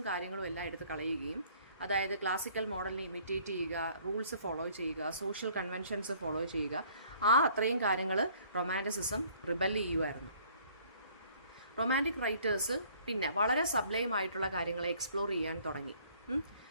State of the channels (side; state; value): both; inverted; correlation -0.58